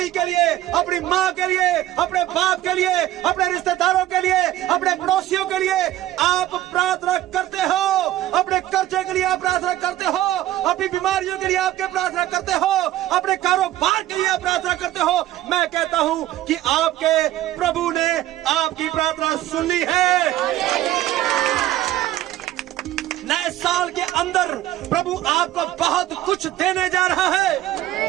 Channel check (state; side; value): quieter; left; 14.2 dB